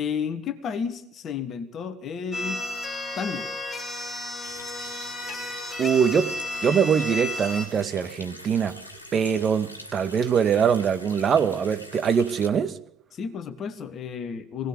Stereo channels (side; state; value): left; quieter; 4.7 dB